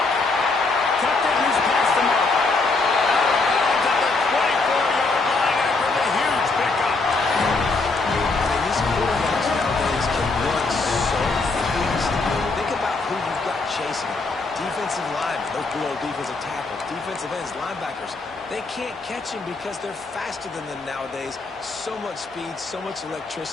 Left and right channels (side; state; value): right; quieter; 3.7 dB